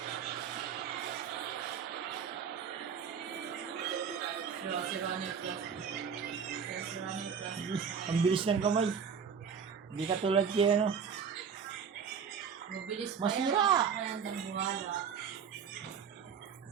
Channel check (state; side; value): quieter; left; 6.8 dB